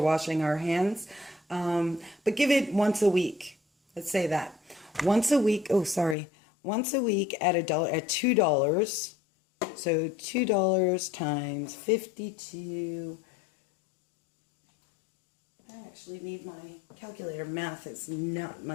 washing our hands. But give it once a week. Let's say that. Once a week, once a week at $2. So $2 times 52. I actually need my calculator. Math is not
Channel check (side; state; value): right; drops out; at 6.2 s